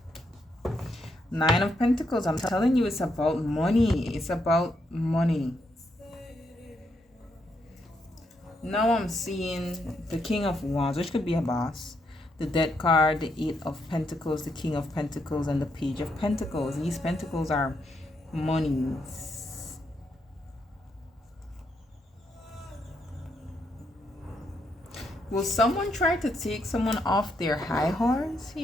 Nine of Pentacles. I'm telling you, it's about money. It's about money. Now I'm seeing the King of Wands, which could be a boss. The Death card, the Eight of Pentacles, the King of Pentacles, and the Page of Pentacles. These pentacles are monies. Will someone try to take someone off their high horse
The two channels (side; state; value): both; normal; correlation 0.78